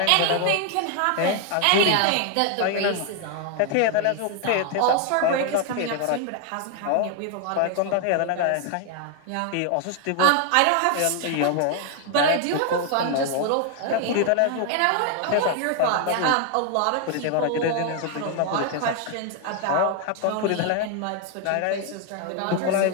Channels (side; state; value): both; different; correlation 0.00